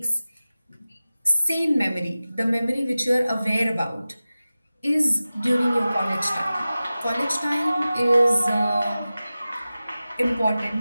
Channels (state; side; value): inverted; both; correlation -0.96